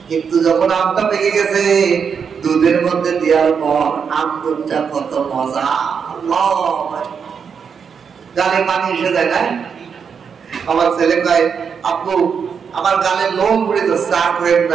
কিন্তু যখন আমটা পেকে গেছে, দুধের মধ্যে দেওয়ার পর আম দুধটা কত মজা, গালে পানি এসে যায় না। আমার ছেলে কয়, আপু আমার গালে লোম পড়ে যাচ্ছে, আর করেন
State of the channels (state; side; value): quieter; left; 6.5 dB